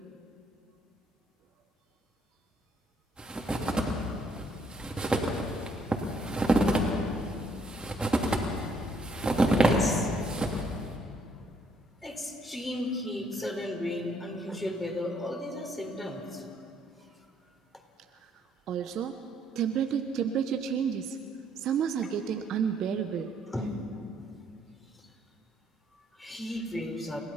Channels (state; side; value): normal; both; correlation 0.68